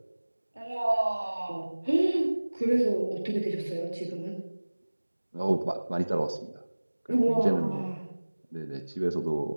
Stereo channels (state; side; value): inverted; both; correlation -1.00